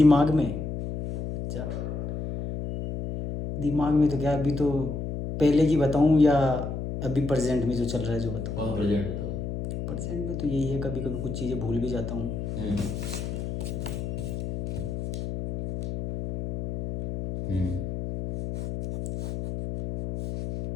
में, अच्छा दिमाग में तो क्या, अभी तो पहले की बताऊँ या अभी प्रेजेंट में जो चल रहा है जो बताऊँ? कहाँ प्रेजेंट बताओ। प्रेजेंट में तो यही है, कभी कभी कुछ चीज़ें भूल भी जाता हूँ। हम्म हम्म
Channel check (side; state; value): left; noise; hum, 5 dB below the sound